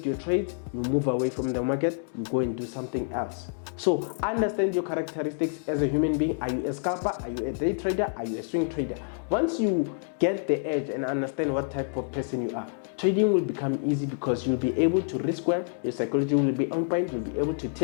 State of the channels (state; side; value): silent; right; digital silence